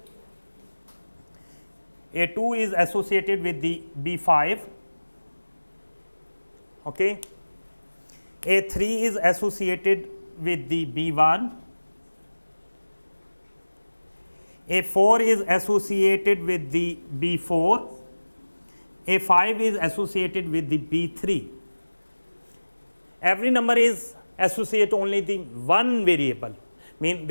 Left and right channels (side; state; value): both; inverted; correlation -1.00